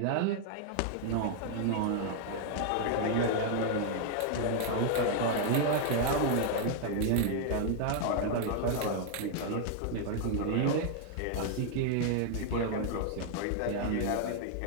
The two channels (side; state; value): both; different; correlation 0.00